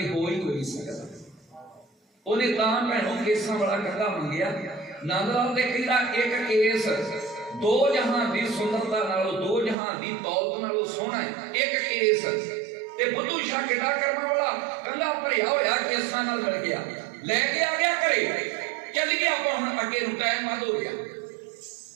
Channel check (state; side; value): drops out; left; at 9.8 s